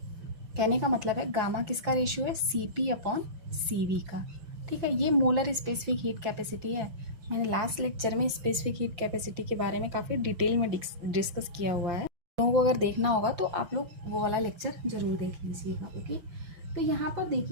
कहने का मतलब है गामा किसका रेशियो है, Cp अपॉन Cv का। ठीक है, ये मोलर स्पेसिफिक हीट कैपेसिटी है। मैंने लास्ट लेक्चर में स्पेसिफिक हीट कैपेसिटी के बारे में काफ़ी डिटेल में डिस्कस किया हुआ है। लोगों को अगर देखना होगा तो आप लोग वो वाला लेक्चर जरूर देख लीजिएगा। ओके, तो यहाँ पर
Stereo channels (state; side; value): late; left; 5.8 ms